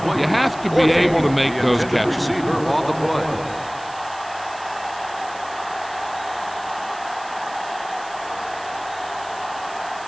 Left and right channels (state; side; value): noise; right; hiss, 19 dB below the sound